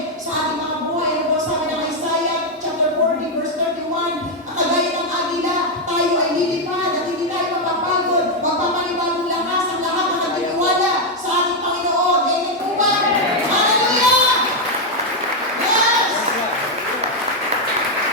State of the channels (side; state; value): both; normal; correlation 0.02